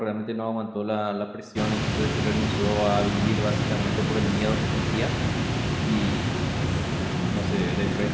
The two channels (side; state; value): both; identical; correlation 1.00